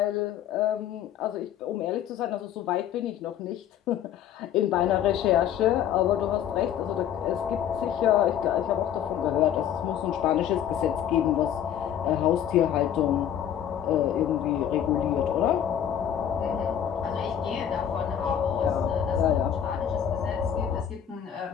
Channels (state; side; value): quieter; right; 9.8 dB